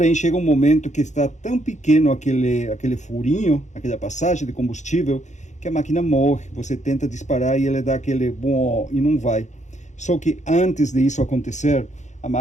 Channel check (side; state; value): right; late; 0.34 ms